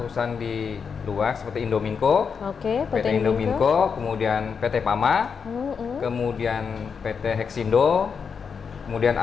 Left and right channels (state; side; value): quieter; right; 6.1 dB